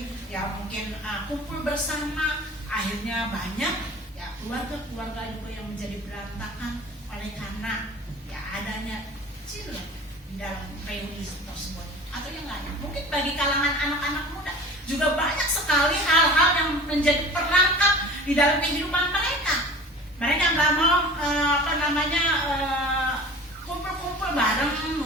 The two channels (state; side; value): normal; both; correlation 0.40